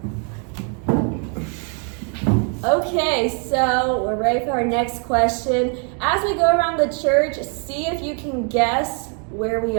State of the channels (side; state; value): left; quieter; 39.4 dB